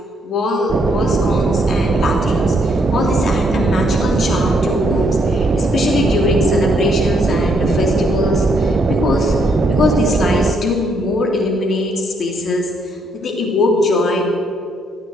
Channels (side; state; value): both; normal; correlation 0.72